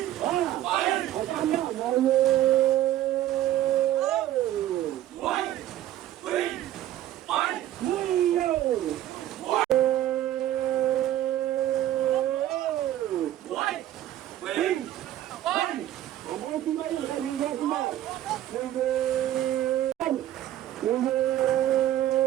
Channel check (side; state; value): left; quieter; 13.0 dB